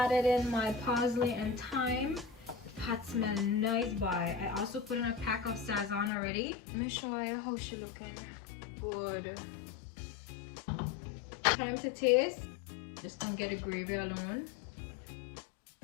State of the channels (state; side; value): drops out; right; at 6.1 s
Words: in my parsley and thyme. The pot smells nice, boy. I also put in a pack of sazon already. Let me show you how she looking. good. Time to taste. Just don't get the gravy alone.